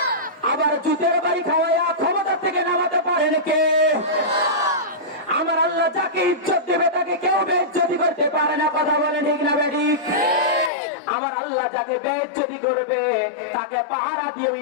আবার জুতের বাড়ি খাওয়াইয়া ক্ষমতা থেকে নামাতে পারেন কে? আমার আল্লাহ যাকে ইজ্জত দেবে তাকে কেউ বেইজ্জতি করতে পারে না। কথা বলেন ঠিক না বেঠিক? আমার আল্লাহ যাকে বেইজ্জতি করবে তাকে পাহারা দিয়ে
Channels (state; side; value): drops out; right; at 10.7 s